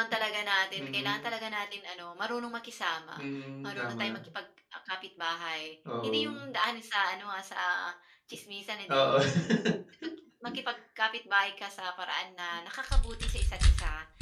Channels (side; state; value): both; identical; correlation 1.00